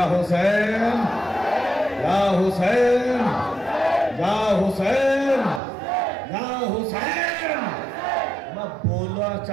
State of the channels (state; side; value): drops out; left; at 5.6 s